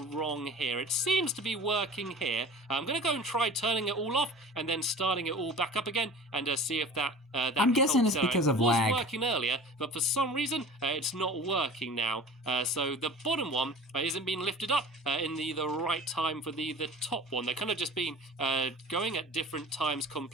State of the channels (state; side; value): normal; both; correlation 0.40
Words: wrong here. It seems to be working here. I'm going to go and try turning it all off and then starting it all back up again and see if that I'm guessing it's because of lag. It was working earlier, but for some reason it's not working now. So the bottom one isn't being lifted up in the right time for the top one. They're kind of just been going at different times